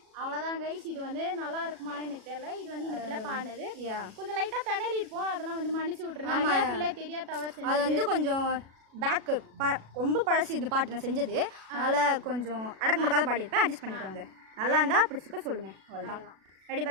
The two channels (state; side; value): late; left; 37 ms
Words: அவ்வளோதான் கைஸ். இது வந்து நல்லா இருக்குமான்னு எனக்கு தெரியல. இது வந்து இந்த பிள்ளை பாடினது. கொஞ்சம் லைட்டாக திணறி இருப்போம், அதெல்லாம் வந்து மன்னிச்சு விட்டுருங்க. பிள்ளை தெரியா தவறு அது வந்து கொஞ்சம் பேக்கு ரொம்ப பழசு இந்த பாட்டு நான் செஞ்சது, அதனால் கொஞ்சம் அடக்க முடக்காத பாடியிருப்பேன், அட்ஜஸ்ட் பண்ணிக்கோங்க. நல்லா இருந்தால் பிடிச்சிருக்க சொல்லுங்கள், அவ்வளோதான். ரெடி?